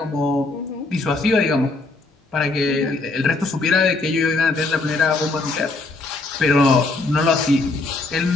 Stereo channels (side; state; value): right; quieter; 3.4 dB